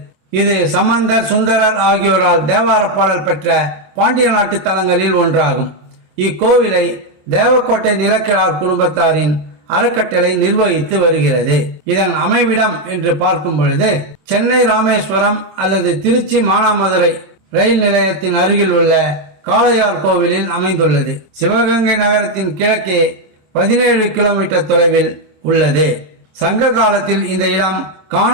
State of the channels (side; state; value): left; late; 27 ms